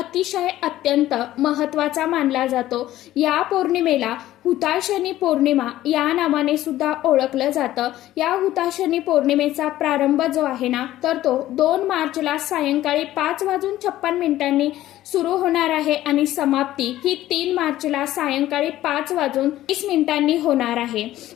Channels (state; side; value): quieter; right; 14.4 dB